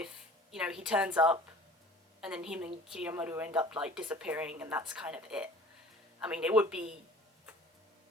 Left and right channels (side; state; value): both; normal; correlation 0.45